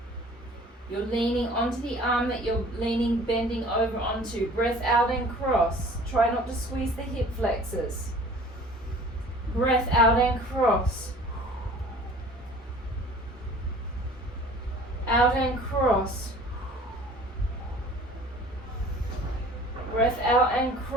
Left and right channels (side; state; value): both; normal; correlation 0.47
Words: You're leaning onto the arm that you're bending over onto. Breath out and cross. Try not to squeeze the hip flexors. Breath out and cross. Out and cross. Breath out and